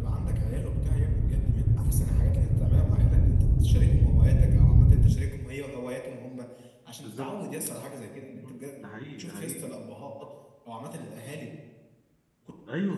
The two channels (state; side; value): identical; both; correlation 1.00